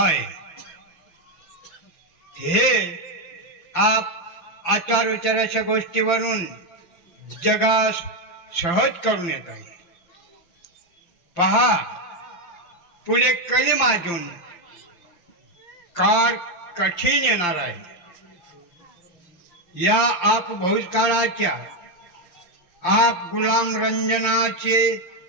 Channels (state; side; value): late; right; 5.8 ms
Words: हे आप आचार विचाराच्या गोष्टीवरून जगास सहज करून येत आहे. पहा, पुढे कली माजून काळ कठीण येणार आहे. या आप भूतकाळाच्या आप गुलाम रंजनाचे